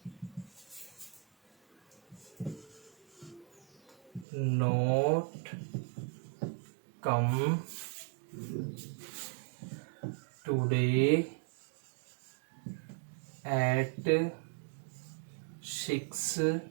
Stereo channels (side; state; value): left; drops out; at 4.2 s